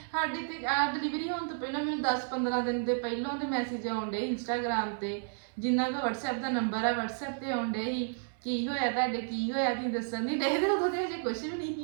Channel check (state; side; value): silent; left; 57 dB below the other